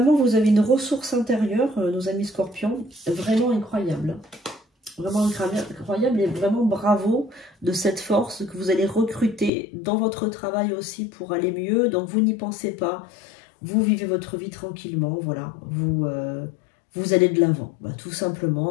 vous avez une ressource intérieure, nos amis scorpions, vraiment incroyable. Vraiment incroyable et vraiment bravo de cette force que vous allez recruter dans votre travail aussi pour aller mieux. Donc vous n'y pensez pas, vous vivez votre vie tranquillement, voilà, vous allez de l'avant, bah, tout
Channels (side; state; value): right; drops out; at 9.5 s